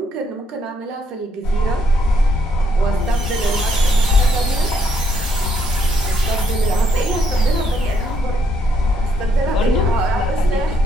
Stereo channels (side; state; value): both; normal; correlation 0.73